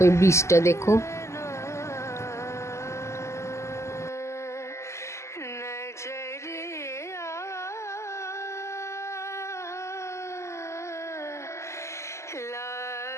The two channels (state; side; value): late; right; 0.13 ms